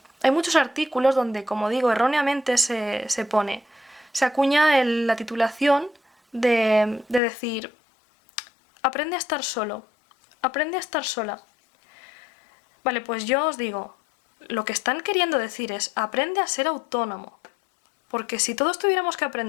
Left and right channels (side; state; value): right; drops out; at 7.2 s